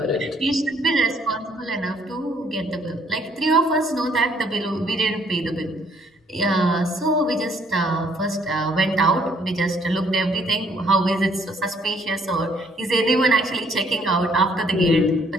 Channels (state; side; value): normal; both; correlation 0.65